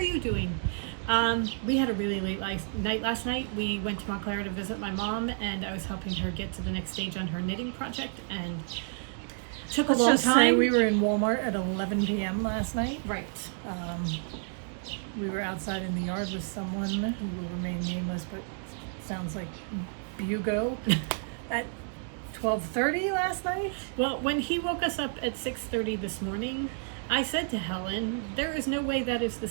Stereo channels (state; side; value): silent; left; 56 dB below the other